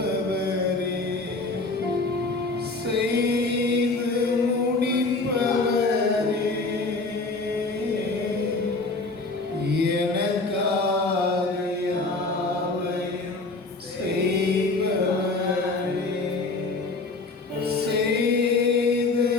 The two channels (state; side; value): quieter; right; 3.5 dB